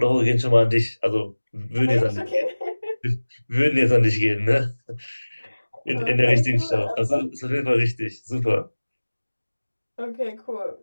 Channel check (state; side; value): inverted; both; correlation -1.00